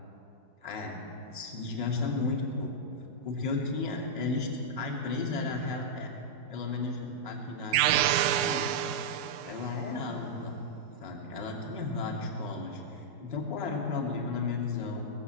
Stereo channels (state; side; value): late; left; 4.7 ms